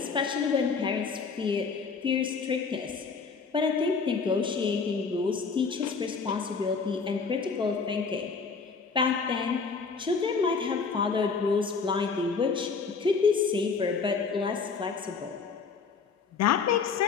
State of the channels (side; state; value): right; quieter; 5.2 dB